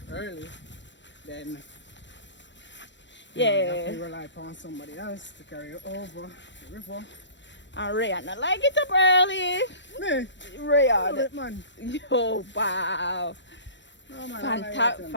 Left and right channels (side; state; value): right; late; 0.53 ms